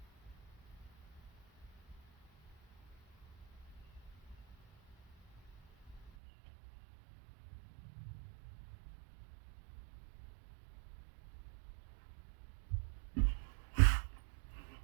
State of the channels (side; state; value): left; drops out; at 6.1 s